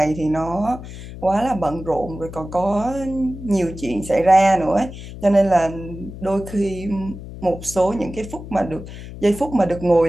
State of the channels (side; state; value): left; noise; hum, 12 dB below the sound